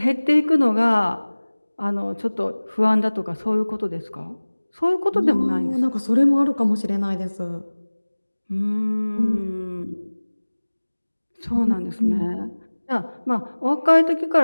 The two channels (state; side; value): inverted; both; correlation -1.00